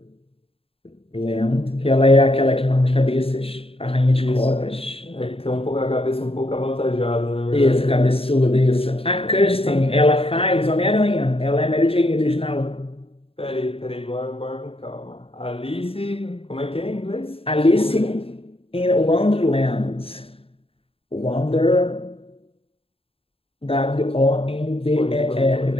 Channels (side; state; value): right; late; 0.27 ms